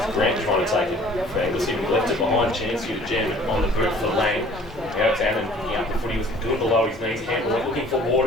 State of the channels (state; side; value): normal; both; correlation 0.51